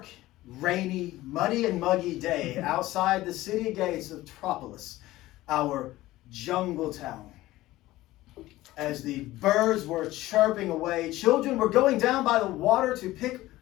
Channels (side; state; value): right; quieter; 16.9 dB